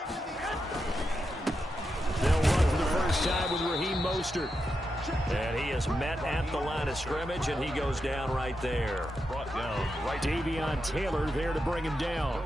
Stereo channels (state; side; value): normal; both; correlation 0.86